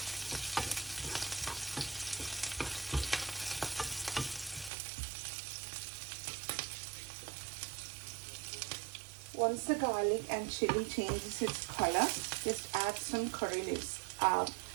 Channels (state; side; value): drops out; left; at 4.7 s